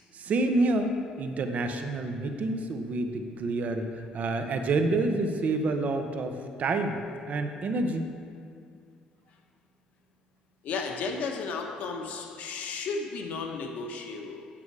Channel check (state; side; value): normal; both; correlation 0.63